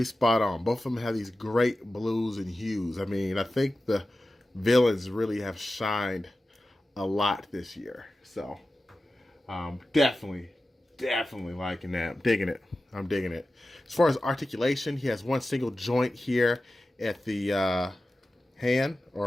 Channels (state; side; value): normal; both; correlation 0.94